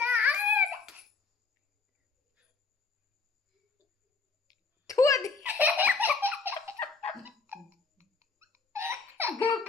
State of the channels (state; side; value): quieter; right; 4.5 dB